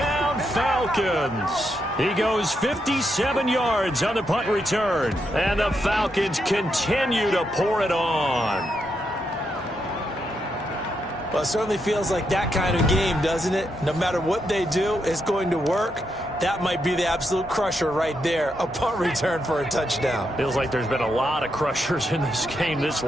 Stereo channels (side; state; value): both; normal; correlation 0.81